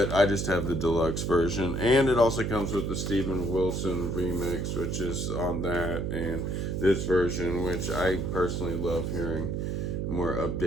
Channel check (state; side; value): noise; right; hum, 1 dB below the sound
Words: I just have the deluxe version. And it also comes with the Steven Wilson remix, which is on that, and this version, which I personally love hearing. More